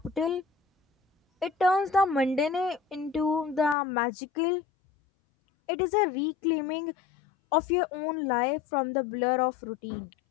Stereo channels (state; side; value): drops out; right; at 3.8 s